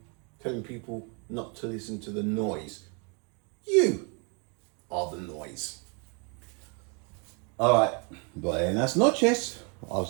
telling people not to listen to the noise. You are the noise. All right, buenas noches.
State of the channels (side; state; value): left; quieter; 35.3 dB